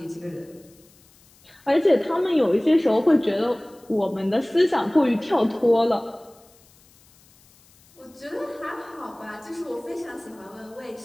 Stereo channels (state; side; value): noise; left; hiss, 29 dB below the sound